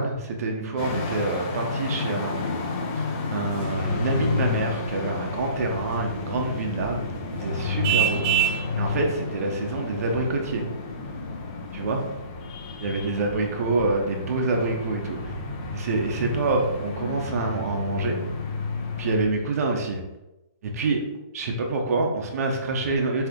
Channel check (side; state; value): both; inverted; correlation -0.49